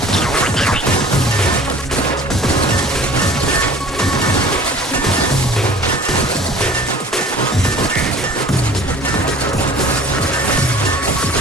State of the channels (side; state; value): both; normal; correlation 0.45